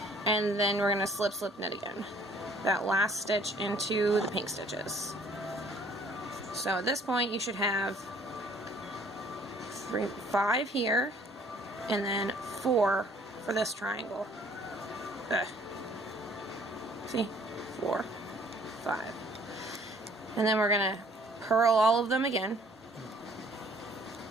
and then we're going to slip, slip, knit again. That last stitch into the pink stitches. So at this point you should have 5 here, and then 4 for this triangle. See? 4, 5. And then we're going to purl all of them again.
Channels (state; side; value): normal; both; correlation 0.58